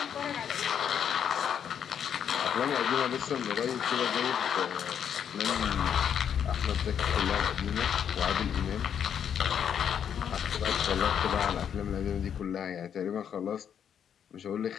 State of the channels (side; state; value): right; quieter; 8.4 dB